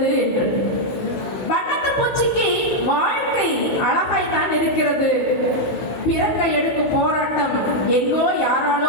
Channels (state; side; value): late; right; 16 ms